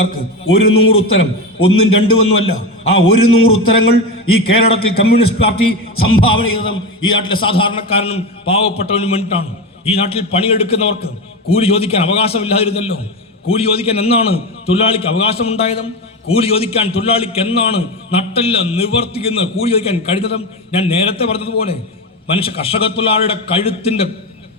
100 ഉത്തരം, 1 2 ഒന്നുമല്ല. ആ 100 ഉത്തരങ്ങൾ ഈ കേരളത്തിൽ കമ്മ്യൂണിസ്റ്റ് പാർട്ടി സംഭാവന ചെയ്തതും ഈ നാട്ടിലെ സാധാരണക്കാരനും പാവപ്പെട്ടവനും വേണ്ടിയിട്ടാണ്. ഈ നാട്ടിൽ പണിയെടുക്കുന്നവർക്ക് കൂലി ചോദിക്കാൻ അവകാശമില്ലാതിരുന്നല്ലോ. കൂലി ചോദിക്കാൻ എന്നാണ് തൊഴിലാളിക്ക് അവകാശമുണ്ടായതും? കൂലി ചോദിക്കാൻ തൊഴിലാളിക്ക് എന്നാണ് നട്ടല്ല നിവർത്തിക്കുന്ന കൂലി ചോദിക്കാൻ കഴിഞ്ഞതും? ഞാൻ നേരത്തെ പറഞ്ഞതുപോലെ കർഷക തൊഴിലാളിയുടെ കഴുത്തിന്റെ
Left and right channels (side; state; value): both; normal; correlation 0.19